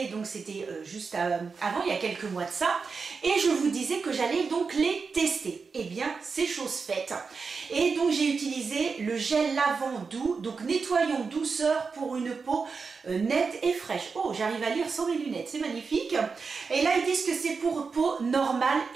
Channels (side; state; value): left; quieter; 5.0 dB